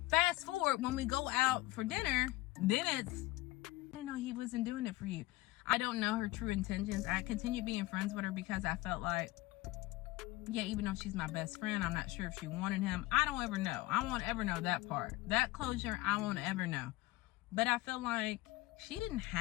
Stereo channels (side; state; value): right; quieter; 18.8 dB